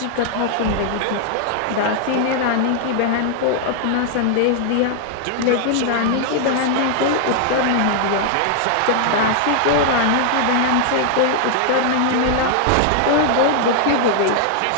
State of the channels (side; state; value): both; different; correlation -0.01